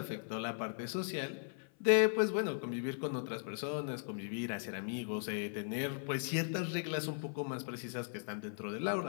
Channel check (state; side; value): silent; right; 52 dB below the other